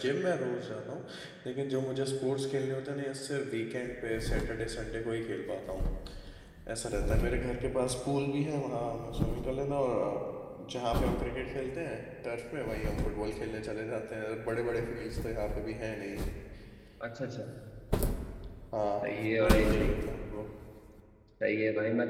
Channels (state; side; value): identical; both; correlation 1.00